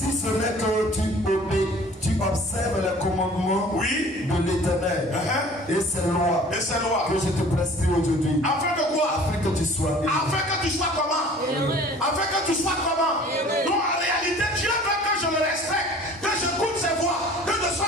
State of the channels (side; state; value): both; normal; correlation 0.48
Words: ce n'est que tu observes les commandements de l'Éternel et ses lois que je te prescris aujourd'hui. Afin que quoi? Afin que tu sois heureux. Afin que tu sois comment? Afin que tu sois comment? Donc en réalité, Dieu veut que je le respecte, que je goûte ses voies, que je